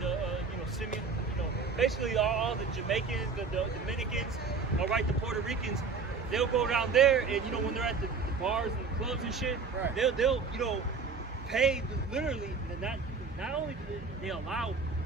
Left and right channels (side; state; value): left; quieter; 4.8 dB